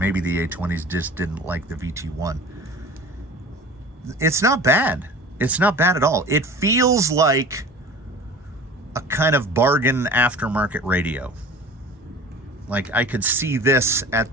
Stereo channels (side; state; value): both; normal; correlation 0.41